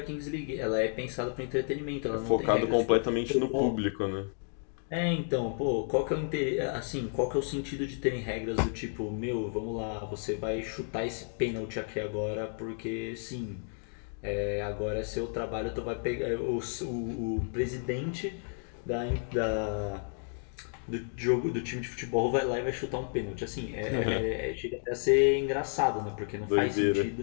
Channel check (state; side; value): silent; right; 57 dB below the other